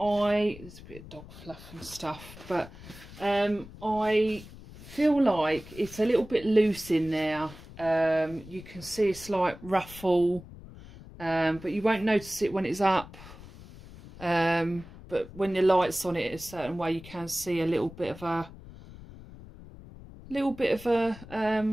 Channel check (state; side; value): noise; left; rumble, 17 dB below the sound